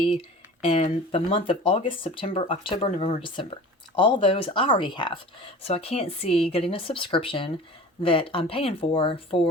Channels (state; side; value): normal; both; correlation 0.39